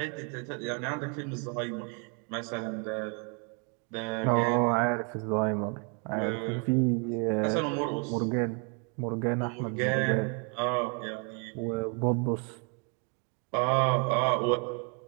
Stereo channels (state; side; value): quieter; left; 37.6 dB